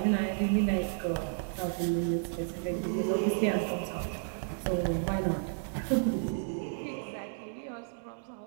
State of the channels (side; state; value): left; silent; digital silence